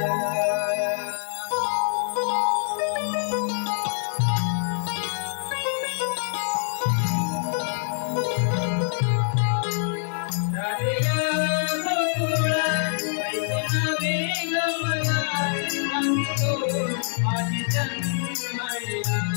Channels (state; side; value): silent; right; digital silence